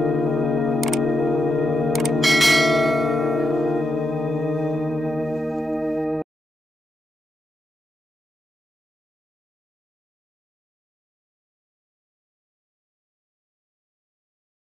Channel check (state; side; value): normal; both; correlation 0.85